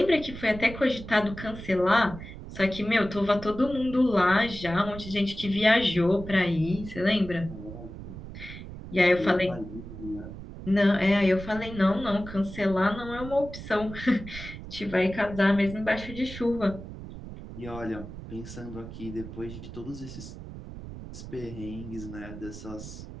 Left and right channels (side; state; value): right; noise; rumble, 12 dB below the sound